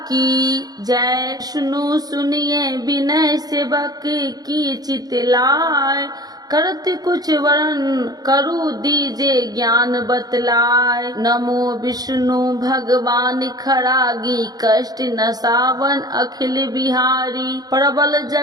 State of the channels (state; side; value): late; left; 0.19 ms